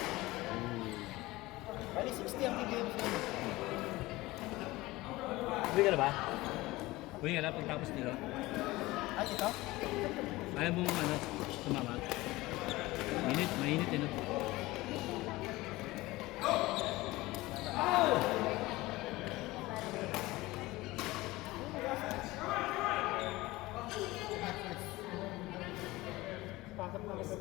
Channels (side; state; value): right; quieter; 19.6 dB